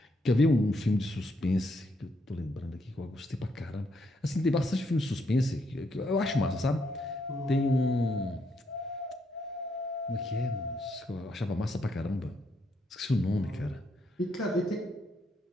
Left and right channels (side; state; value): both; normal; correlation 0.76